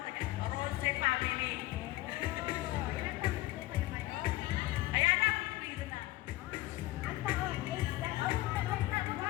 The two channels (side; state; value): right; quieter; 17.8 dB